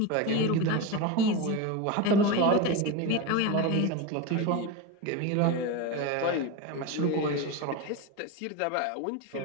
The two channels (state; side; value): different; both; correlation 0.06